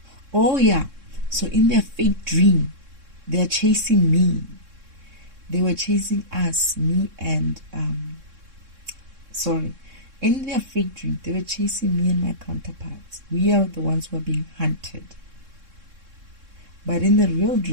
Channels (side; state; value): left; late; 3.6 ms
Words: oh yeah, so in their fake dream, they're chasing me. They were chasing us, me and, in their fake dream, they were chasing me and my counterparts. We are the ones who are being hunted. But in the real